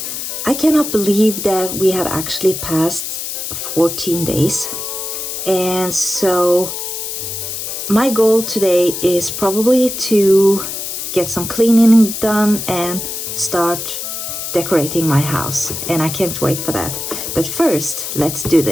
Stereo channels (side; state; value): left; noise; hiss, 5 dB below the sound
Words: I cannot believe that we have actually passed 14 days. And so my goal today is probably to get some cleaning done and start decorating my house, and I can't wait for that. But first, let's do